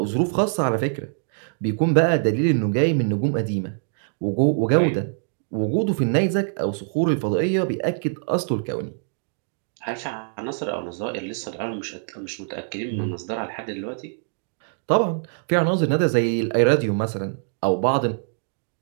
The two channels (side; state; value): left; silent; digital silence